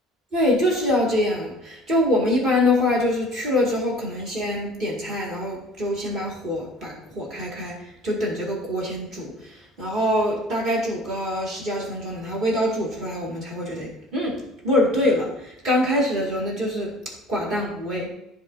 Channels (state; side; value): normal; both; correlation 0.46